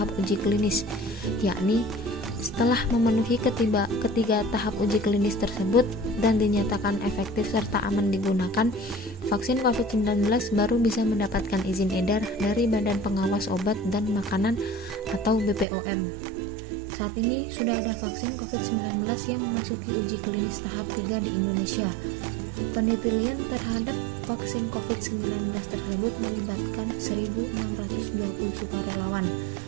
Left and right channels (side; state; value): left; drops out; at 15.7 s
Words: uji klinis, yakni setelah memenuhi ketiga tahap uji klinis tersebut dan dinyatakan efektif serta aman digunakan, vaksin COVID-19 baru bisa mendapatkan izin edar dari Badan Pengawas Obat dan Makanan atau BPOM. Saat ini sudah ada vaksin COVID-19 yang memasuki uji klinis tahap 3 di Indonesia. Penelitian terhadap vaksin COVID-19 tersebut melibatkan 1.620 sukarelawan.